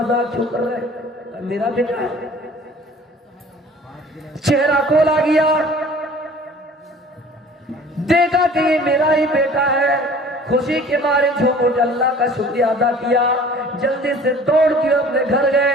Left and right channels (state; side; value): normal; both; correlation 0.48